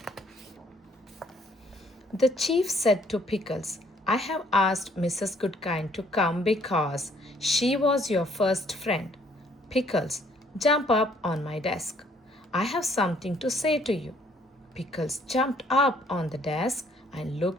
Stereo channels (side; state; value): both; normal; correlation 0.63